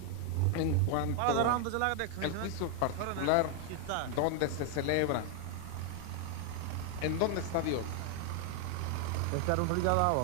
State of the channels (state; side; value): different; both; correlation 0.01